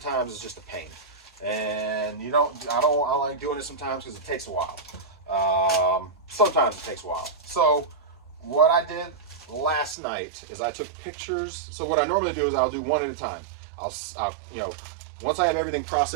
is just a pain. And I like doing it sometimes because it takes a while. Sometimes it takes a while. So what I did last night is I took pictures. So what I normally do is I'll do one at a time. I'll once I have everything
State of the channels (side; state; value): left; drops out; at 10.0 s